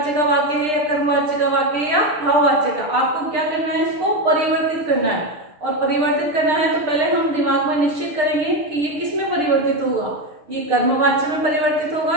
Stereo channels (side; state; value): left; late; 6.6 ms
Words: का वाक्य है या कर्मवाच्य का वाक्य है या भाववाच्य का। आपको क्या करना है, इसको परिवर्तित करना है, और परिवर्तित करना है तो पहले हम दिमाग में निश्चित करेंगे कि ये किस में परिवर्तित होगा, ये कर्मवाच्य में परिवर्तित होगा